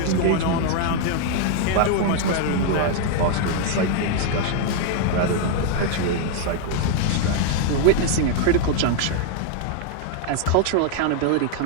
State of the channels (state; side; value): different; both; correlation 0.00